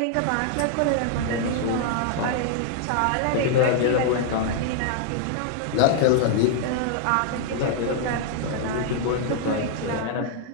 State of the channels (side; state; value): both; different; correlation 0.00